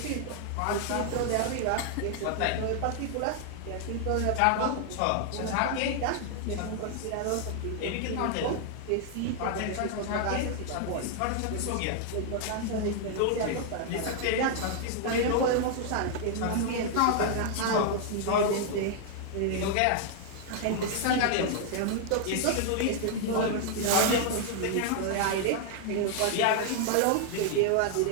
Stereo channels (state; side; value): different; both; correlation 0.00